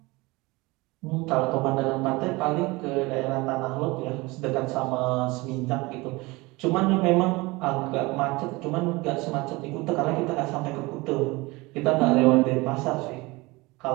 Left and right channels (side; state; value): left; quieter; 23.1 dB